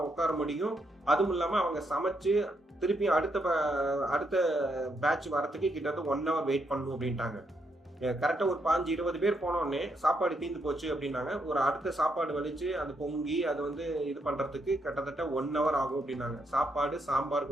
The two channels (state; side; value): normal; both; correlation 0.78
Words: உட்கார முடியும். அதுவும் இல்லாம அவங்க சமைச்சு திருப்பி அடுத்த பேட்ச் வரத்துக்கு கிட்டத்தட்ட 1 hour வெயிட் பண்ணணும் அப்படின்ட்டாங்க. கரெக்டாக ஒரு 15-20 பேர் போனோடனே சாப்பாடு தீர்ந்து போச்சு அப்படின்னாங்க. ஒரு அடுத்த சாப்பாடு வலிச்சு அது பொங்கி அது வந்து இது பண்றதுக்கு கிட்டத்தட்ட 1 hour ஆகும் அப்படின்னாங்க. சாப்பாடு சாம்பார்